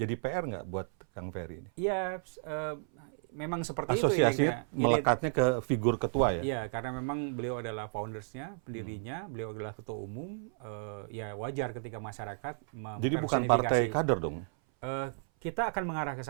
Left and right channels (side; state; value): left; silent; 56 dB below the other